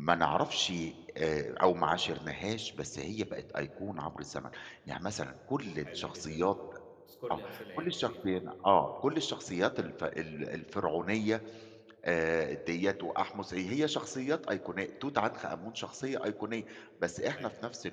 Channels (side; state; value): both; identical; correlation 1.00